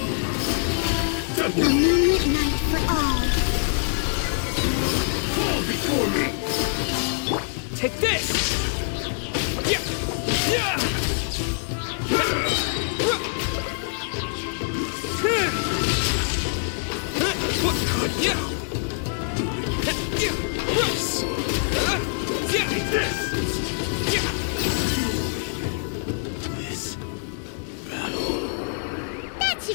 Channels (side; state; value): right; silent; digital silence